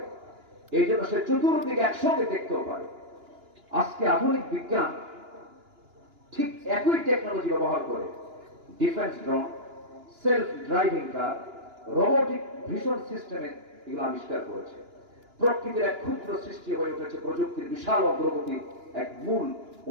এই জন্য সে চতুর্দিকে একসঙ্গে দেখতেও পারে। আজকে আধুনিক বিজ্ঞান ঠিক একই টেকনোলজি ব্যবহার করে ডিফেন্স ড্রোন, সেলফ ড্রাইভিং কার, রোবোটিক ভিশন সিস্টেমে এগুলো আবিষ্কার করেছে। প্রকৃতির এক ক্ষুদ্র সৃষ্টি হয়ে উঠেছে প্রযুক্তির বিশাল অগ্রগতির এক মূল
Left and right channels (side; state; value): left; late; 2.9 ms